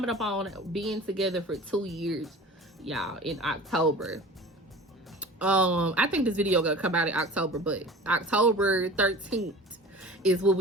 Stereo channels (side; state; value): both; normal; correlation 0.40